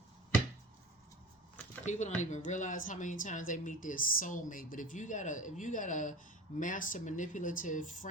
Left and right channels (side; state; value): both; normal; correlation 0.36